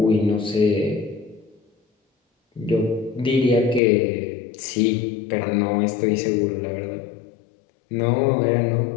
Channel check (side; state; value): right; drops out; at 3.8 s